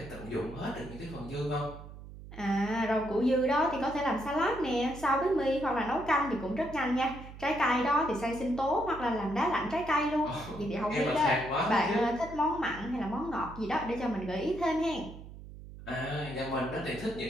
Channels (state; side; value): noise; right; hum, 14 dB below the sound